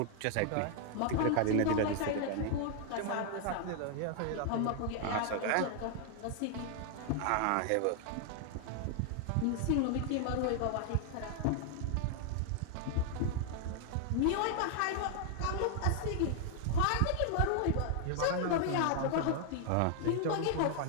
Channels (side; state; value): both; different; correlation 0.00